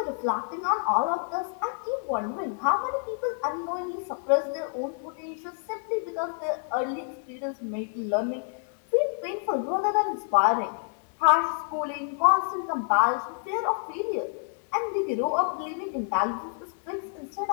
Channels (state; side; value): silent; right; 59 dB below the other